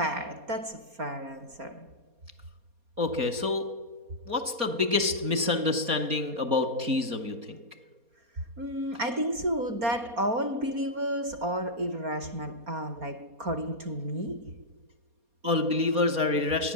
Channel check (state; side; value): late; left; 4.2 ms